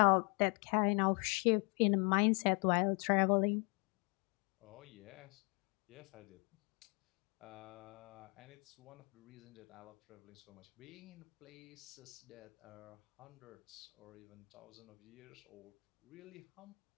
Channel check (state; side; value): quieter; right; 34.2 dB